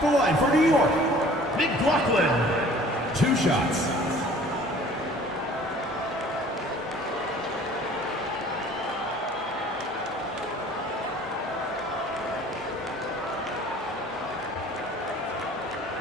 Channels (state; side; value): normal; both; correlation 0.50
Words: the line for New York, McLaughlin. 2 shots.